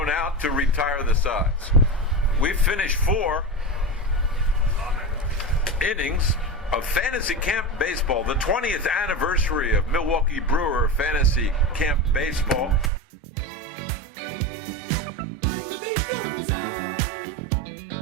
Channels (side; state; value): left; drops out; at 12.9 s